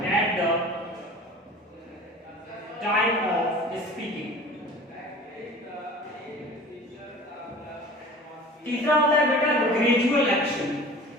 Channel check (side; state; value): both; normal; correlation 0.41